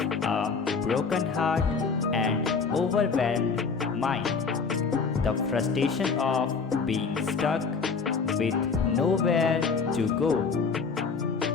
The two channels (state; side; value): quieter; right; 5.1 dB